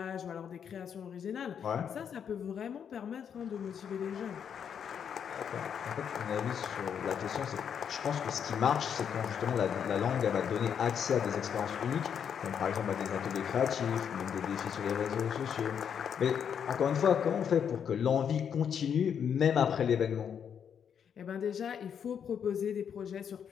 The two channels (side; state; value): right; quieter; 7.9 dB